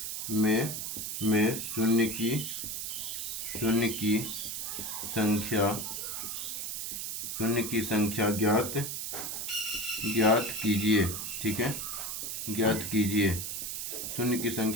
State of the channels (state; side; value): noise; right; hiss, 4 dB below the sound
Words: में शून्य की संख्या ज्ञात कीजिए। ठीक है, ज्ञात कीजिए, शून्य की